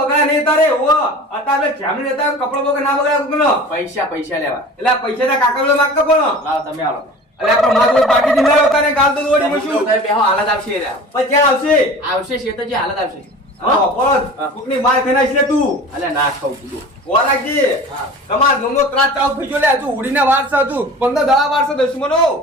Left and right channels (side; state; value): both; normal; correlation 0.39